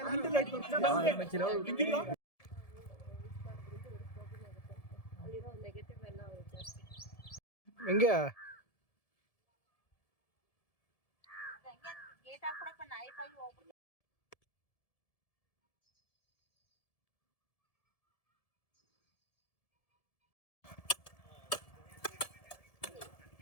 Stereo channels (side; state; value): right; late; 1.7 ms